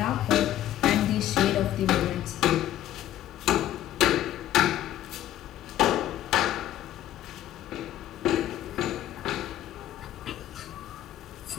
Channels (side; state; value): right; quieter; 12.8 dB